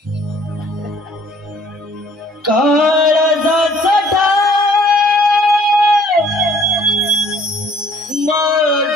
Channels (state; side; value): normal; both; correlation 0.58